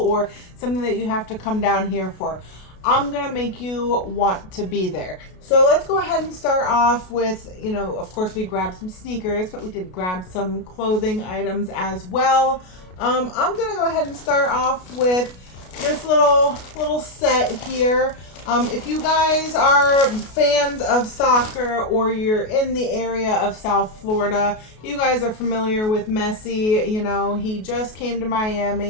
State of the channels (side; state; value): right; late; 33 ms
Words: something that you have to come down here for. I'm going to make you want to be there. So let's go ahead and start off with, of course we grabbed some sneakers, but we did grab some clothing items as well. I'm going to go ahead and start off with this little set here. If you guys are fans of soccer or you're in the area of South Florida, you guys are familiar with Messi. He just came to